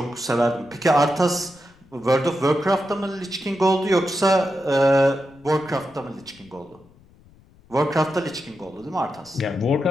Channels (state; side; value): noise; left; rumble, 28 dB below the sound